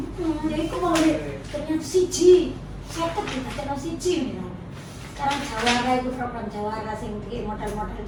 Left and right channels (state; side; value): identical; both; correlation 1.00